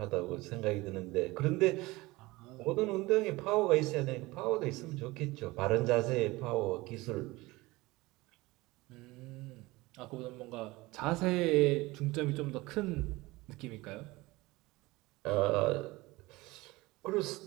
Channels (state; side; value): quieter; left; 21.1 dB